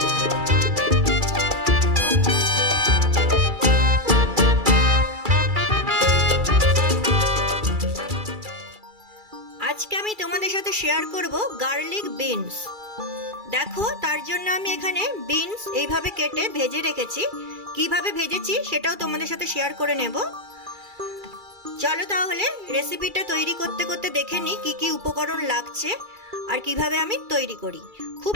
আজকে আমি তোমাদের সাথে শেয়ার করব গার্লিক বিনস। দেখো, তার জন্য আমি এখানে বিনস এইভাবে কেটে ভেজে রেখেছি। কিভাবে ভেজেছি সেটাও তোমাদের সাথে শেয়ার করে নেব। চলো তাহলে রেসিপিটা তৈরি করতে করতে দেখে নিই কি কি উপকরণ লাগছে আর কিভাবে আমি তৈরি করি। খুব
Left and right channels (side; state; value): left; late; 2.3 ms